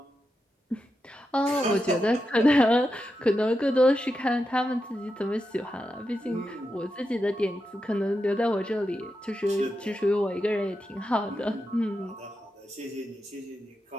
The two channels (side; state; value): both; normal; correlation 0.88